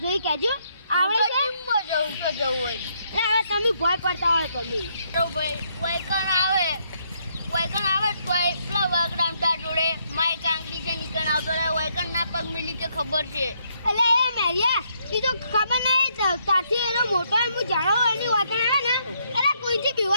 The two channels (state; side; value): inverted; both; correlation -0.73